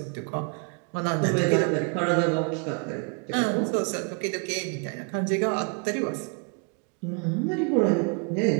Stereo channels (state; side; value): quieter; left; 36.2 dB